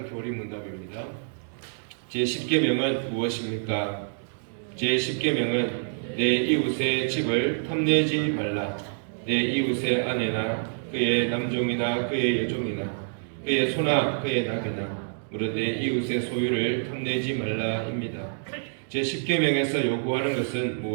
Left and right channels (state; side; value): silent; left; digital silence